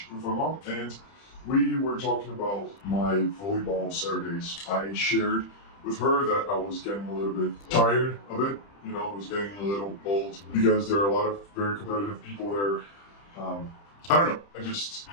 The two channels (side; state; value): right; late; 30 ms